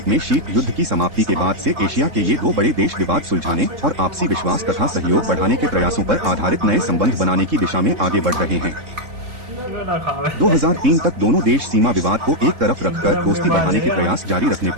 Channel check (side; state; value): left; late; 3.7 ms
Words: में शीत युद्ध की समाप्ति के बाद से एशिया के ये दो बड़े देश विवाद सुलझाने और आपसी विश्वास तथा सहयोग बढ़ाने के प्रयासों पर आधारित नए संबंध बनाने की दिशा में आगे बढ़ रहे हैं। 2003 तक दोनों देश सीमा विवाद को एक तरफ रखकर दोस्ती बढ़ाने के प्रयास जारी रखने